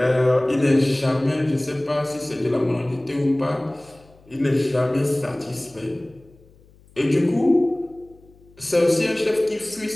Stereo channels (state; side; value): noise; left; hum, 28 dB below the sound